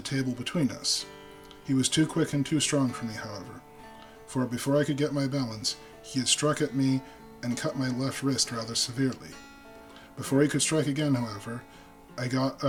table between us. He was too quick and too strong for me, however, for before I could get my balance, he had struck at me and cut my left wrist rather severely. Before he could strike again, however, I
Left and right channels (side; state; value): both; identical; correlation 1.00